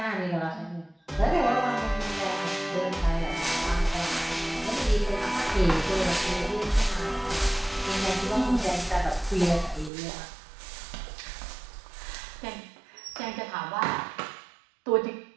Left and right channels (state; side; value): drops out; left; at 9.9 s